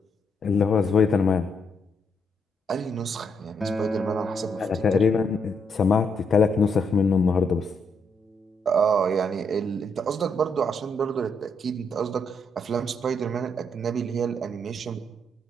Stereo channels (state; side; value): normal; both; correlation 0.76